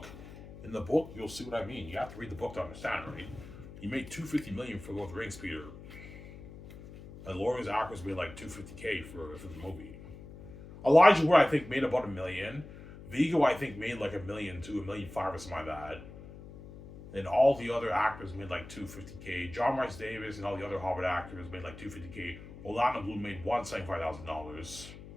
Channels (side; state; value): left; noise; hum, 15 dB below the sound